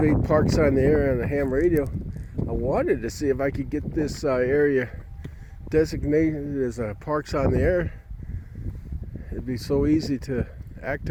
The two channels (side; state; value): both; identical; correlation 1.00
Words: Parks on the Air on the ham radio. I wanted to see if I could get this area designated as Parks on the Air. It'd be so easy to